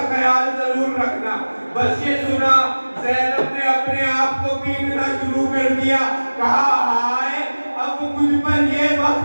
خیال ضرور رکھنا. بس یہ سنا زینب نے اپنے آپ کو پیٹنا شروع کر دیا. کہا ہائے اب مجھ پر یہ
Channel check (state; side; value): inverted; both; correlation -1.00